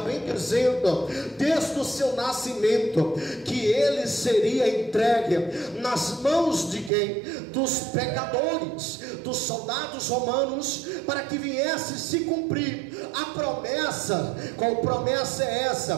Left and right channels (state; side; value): drops out; left; at 6.9 s